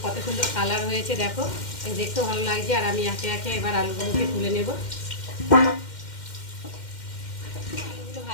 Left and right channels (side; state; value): right; late; 2.1 ms